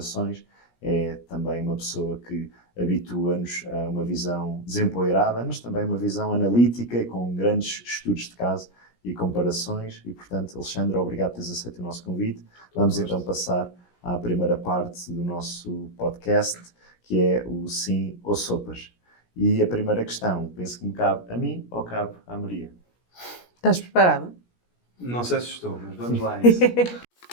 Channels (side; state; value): right; late; 17 ms